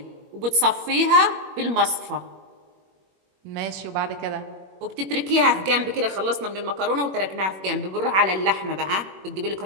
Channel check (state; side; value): late; left; 21 ms